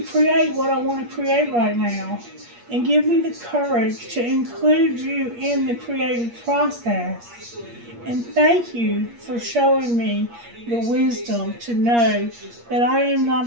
create what I want to create right now, and give me the courage to include you in the creative process. And thank you for showing me the wisdom to know that I am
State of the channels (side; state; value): left; late; 8.5 ms